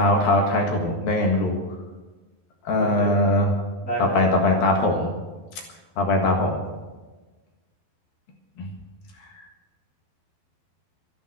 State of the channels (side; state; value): right; late; 12 ms